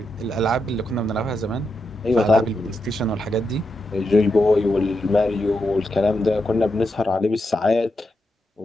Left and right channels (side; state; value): both; normal; correlation 0.85